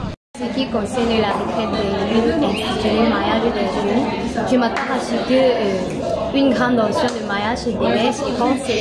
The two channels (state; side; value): identical; both; correlation 1.00